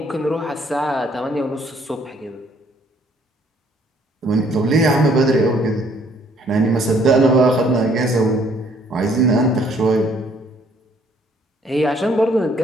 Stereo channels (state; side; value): normal; both; correlation 0.63